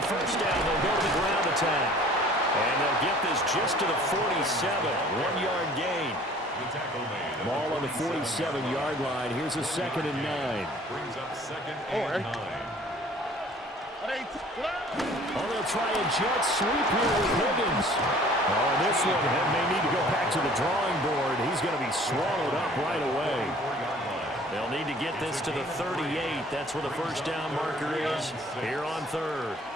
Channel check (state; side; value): normal; both; correlation 0.52